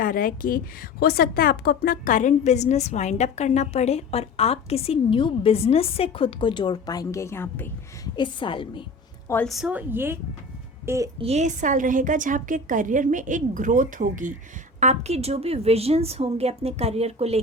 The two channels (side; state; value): right; quieter; 3.2 dB